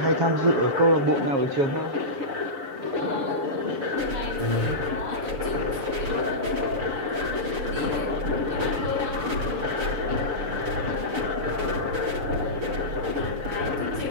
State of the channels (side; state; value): left; late; 7.1 ms